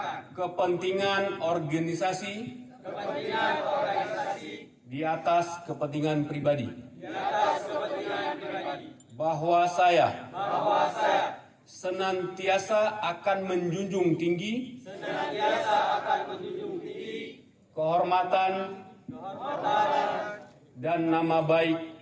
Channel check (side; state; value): both; identical; correlation 1.00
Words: kepentingan organisasi di atas kepentingan pribadi. Bahwa saya senantiasa akan menjunjung tinggi kehormatan dan nama